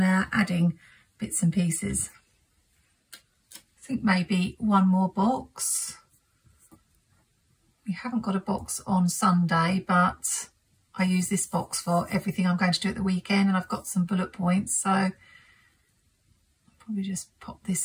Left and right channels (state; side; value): identical; both; correlation 1.00